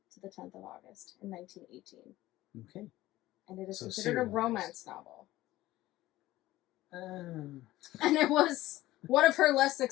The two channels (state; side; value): quieter; right; 16.4 dB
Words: to the 10th of August in 1918. Okay. And it is So considered a serialized. romance novel. Um, And it was one of her less